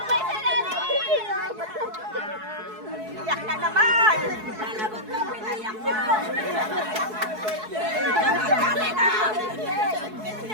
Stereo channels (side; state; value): left; late; 4.7 ms